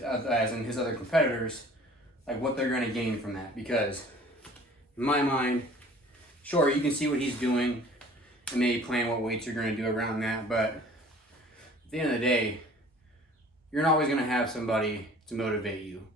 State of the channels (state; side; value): normal; both; correlation 0.49